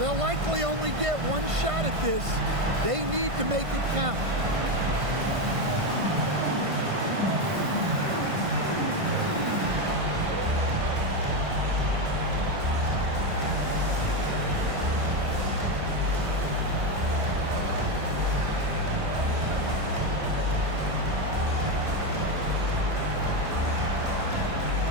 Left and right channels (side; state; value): left; late; 1.5 ms